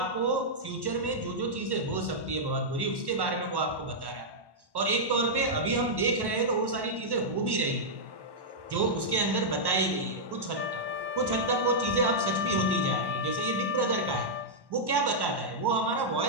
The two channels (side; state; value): left; late; 1.1 ms